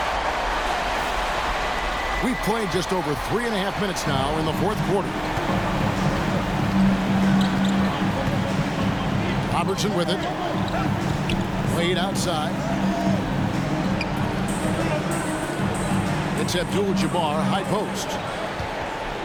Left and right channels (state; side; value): identical; both; correlation 1.00